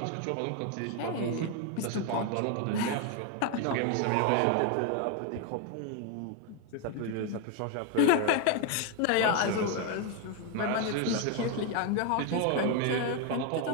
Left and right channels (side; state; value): both; different; correlation 0.01